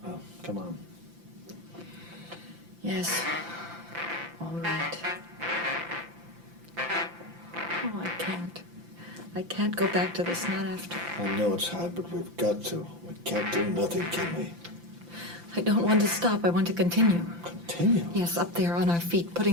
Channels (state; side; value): late; left; 5.9 ms